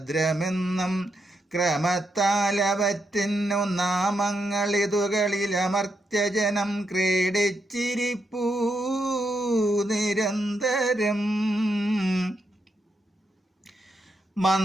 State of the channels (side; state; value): both; normal; correlation 0.82